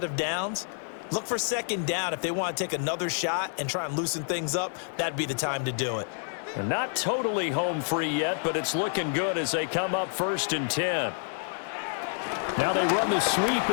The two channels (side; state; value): right; silent; digital silence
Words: of downs. Look for 2nd down. If they want to take another shot and try and loosen things up, that'd be the time to do it. They're not totally home free yet, but it's looking good as they come up 1st and 10. Now they run the sweep